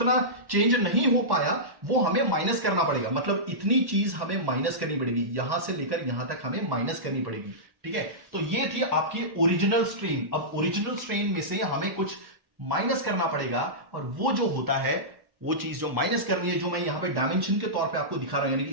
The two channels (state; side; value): late; left; 1.1 ms